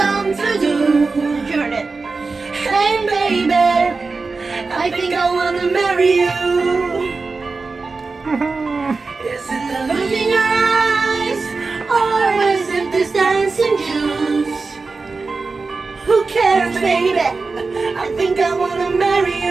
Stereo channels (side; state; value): left; quieter; 4.1 dB